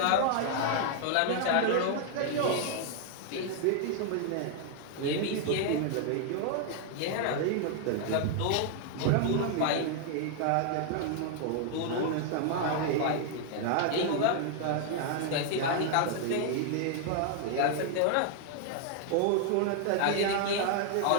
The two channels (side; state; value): both; different; correlation 0.00